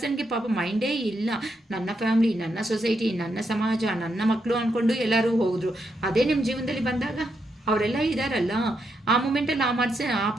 ಪಾಪ ಮೈಂಡೇ ಇಲ್ಲ. ನನ್ನ ಫ್ಯಾಮಿಲಿ, ನನ್ನ ಸೊಸೈಟಿ, ನನ್ನ ಸಮಾಜ, ನನ್ನ ಮಕ್ಕಳು ಅಂದ್ಕೊಂಡು ಎಲ್ಲರೂ ಹೋದ್ರು. ಅದೇ ನಿಮ್ಮ ಜೀವನದಲ್ಲಿ ಬಂದಾಗ ಅವರೆಲ್ಲ ಇದ್ದಾರಲ್ಲ, ಆ ಮೂಮೆಂಟಲ್ಲಿ ಆ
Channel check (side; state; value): both; normal; correlation 0.81